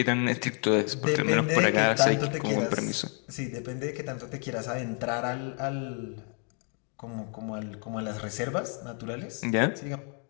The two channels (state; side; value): quieter; right; 38.8 dB